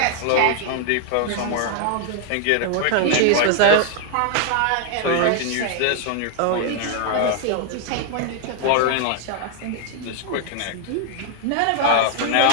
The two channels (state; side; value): different; both; correlation 0.00